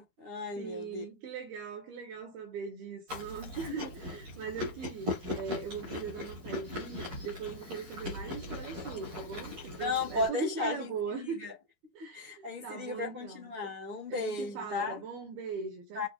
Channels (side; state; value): left; late; 12 ms